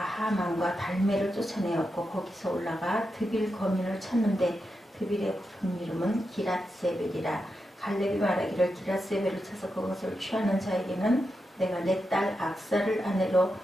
달메를 쫓아내었고 거기서 올라가 드빌 거민을 쳤는데 드빌의 본 이름은 기랏세벨이라. 갈렙이 말하기를 기랏세벨을 쳐서 그것을 취하는 자에게는 내가 내 딸 악사를 아내로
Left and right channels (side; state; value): both; normal; correlation 0.87